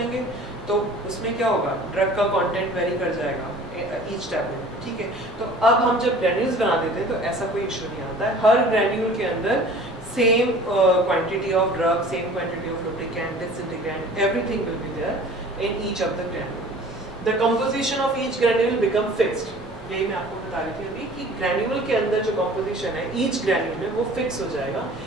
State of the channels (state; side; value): normal; both; correlation 0.46